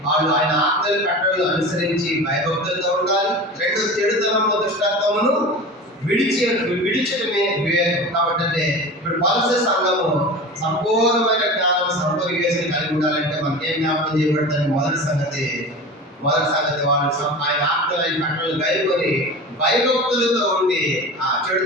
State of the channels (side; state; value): both; normal; correlation 0.32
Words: వాళ్ళు ఆయన ఆజ్ఞలు కట్టడలు అనుసరించి భయభక్తులతో ఉండాలి. రెండు చెడుతనము దుష్టాత్మను విడిచడమే వివేకం. కాబట్టి అంటే ఇప్పుడు కొలస్సీ సంఘము సంపూర్ణమైన జ్ఞానం సంపూర్ణ వివేచన కలిగి ఉండాలంటే మనకి ఏం జ్ఞాపకం చేయబడుతుంది? మొదటి సంగతి వాళ్ళు ఆయన ఆజ్ఞలు కట్టడలు గైకొని భయభక్తులతో ఉండి ఆ